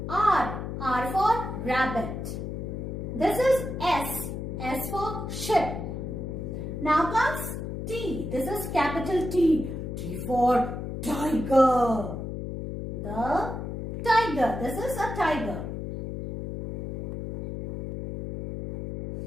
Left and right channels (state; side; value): noise; left; hum, 6 dB below the sound